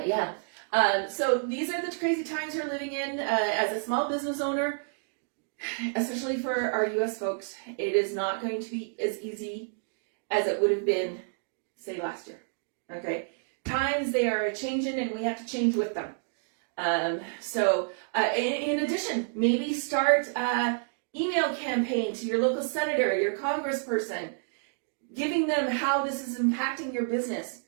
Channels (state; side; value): silent; left; digital silence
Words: yeah. So these are the crazy times we're living in as a small business owner, especially for our US folks. It is not going to be as easy as it would have been, say, last year. Okay? Times, they are changing and we have to change with them. In addition, maybe start an email campaign to your local senator, your congressperson, giving them how this is impacting your business.